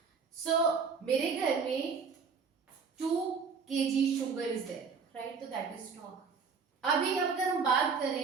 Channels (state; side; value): quieter; left; 5.5 dB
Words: सो मेरे घर में 2 kg sugar is there, right? तो that is stock. अभी अगर हम बात